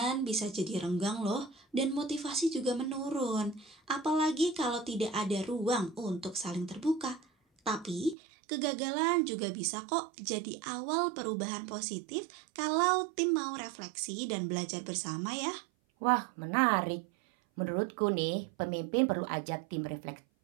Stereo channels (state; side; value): drops out; left; at 8.2 s